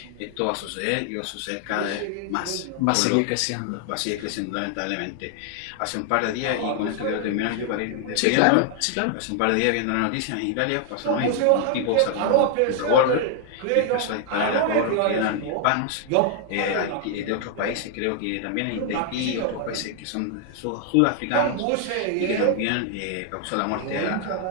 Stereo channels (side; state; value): both; different; correlation 0.00